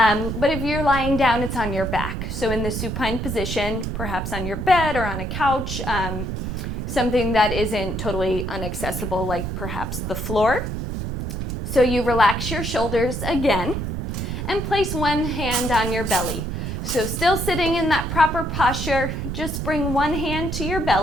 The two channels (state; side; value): noise; right; rumble, 4 dB below the sound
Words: if you're lying down, it's on your back. So in the supine position, perhaps on your bed or on a couch, something that isn't totally inaccessible, like perhaps the floor. So you relax your shoulders again and place one hand on your belly. So still sitting in that proper posture, just bring one hand to your